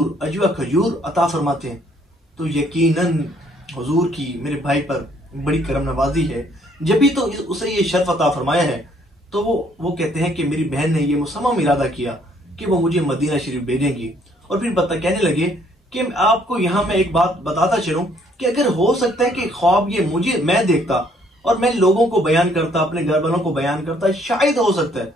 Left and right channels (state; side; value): normal; both; correlation 0.65